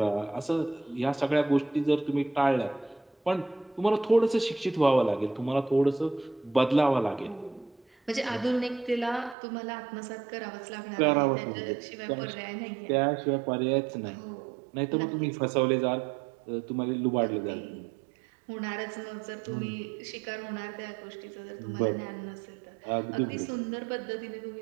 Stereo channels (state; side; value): drops out; left; at 9.3 s